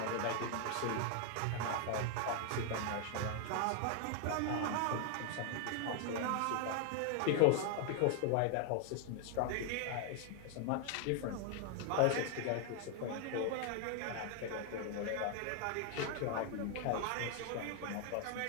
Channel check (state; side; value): different; both; correlation 0.00